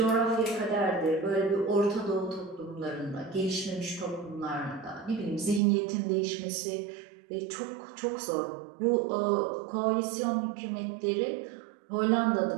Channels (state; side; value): drops out; left; at 5.6 s